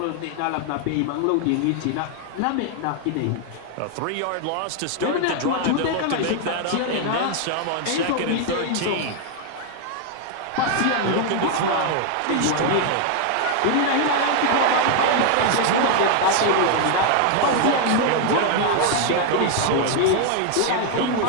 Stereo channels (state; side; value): different; both; correlation 0.00